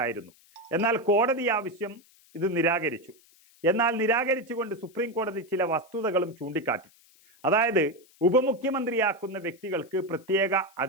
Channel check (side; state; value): left; noise; hiss, 29 dB below the sound